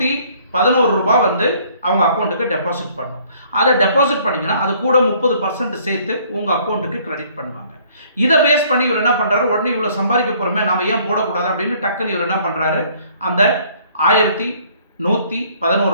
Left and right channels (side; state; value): both; inverted; correlation -0.60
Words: ரூபாய் வந்து அவங்க அக்கௌண்ட்டுக்கு டெபாசிட் பண்ணணும். அதை டெபாசிட் பண்ணிங்கன்னா அது கூட 30% சேர்த்து உங்கள் அக்கௌண்ட்டுக்கு கிரெடிட் பண்ணுவாங்க. இதை பேஸ் பண்ணி இவர் என்ன பண்ணுறாரு, உடனே இவ்வளோ சம்பாதிக்க போகிறோமே நாம் ஏன் போடக்கூடாது அப்படின்னு டக்குன்னு இவர் என்ன பண்ணுறாரு, அந்த 1111